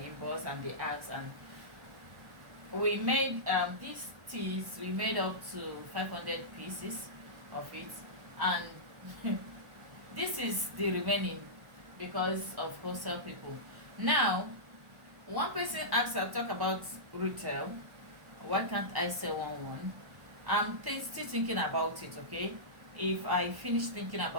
inbox and they ask, and we made these teas, we made up to 500 pieces of it, and this is the remaining because of wholesale people. Now, one person asked, I talk about retail. Why can't I sell one? I'm still thinking about it, okay? If I finish thinking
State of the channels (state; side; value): late; left; 1.2 ms